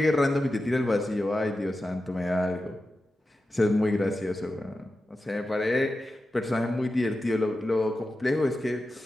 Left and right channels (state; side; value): normal; both; correlation 0.92